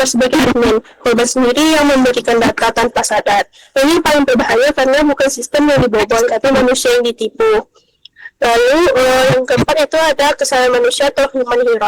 sebagai admin. Korban sendiri yang memberikan data tanpa sadar. Ini paling berbahaya karena bukan sistem yang dibobol, tapi manusia yang ditipu. Lalu yang keempat itu ada kesalahan manusia atau human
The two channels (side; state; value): both; identical; correlation 1.00